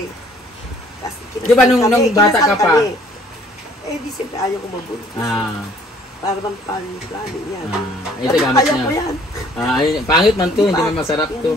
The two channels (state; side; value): normal; both; correlation 0.58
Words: Kasi Di ba nung bata ka pa? kami. Eh, di siyempre ayaw ko mabuntis. Para bang plano yan. Ito gamit Ayaw ko niya. yan. Ayun, pangit man to, hindi man masarap Hindi to.